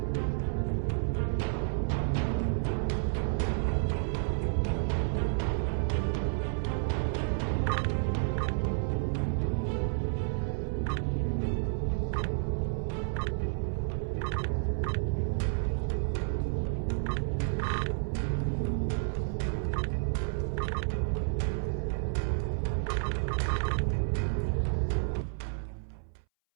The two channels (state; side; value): silent; left; 57 dB below the other